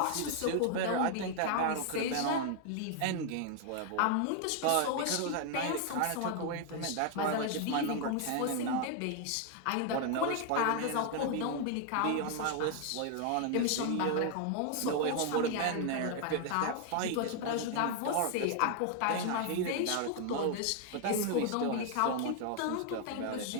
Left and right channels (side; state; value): both; different; correlation 0.00